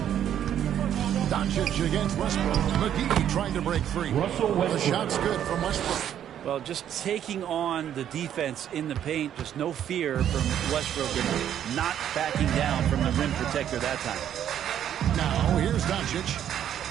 Doncic against Westbrook. McGee trying to break free. The shot's good from Westbrook. Well, just taking on the defense in the paint, just no fear from Westbrook and not backing down from the rim protector that time. Now, here's Doncic.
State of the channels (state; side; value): quieter; left; 10.1 dB